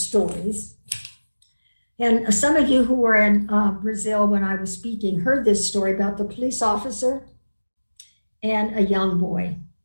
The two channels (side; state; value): both; inverted; correlation -1.00